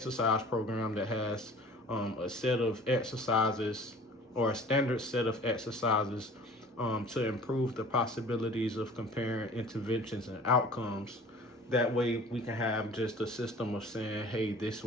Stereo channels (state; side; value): normal; both; correlation 0.46